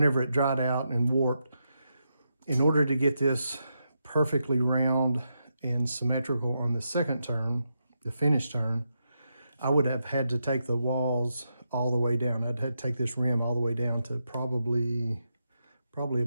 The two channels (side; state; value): both; inverted; correlation -0.84